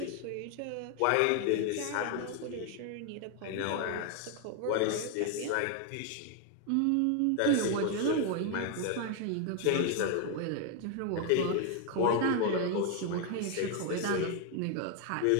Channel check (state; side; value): different; both; correlation 0.01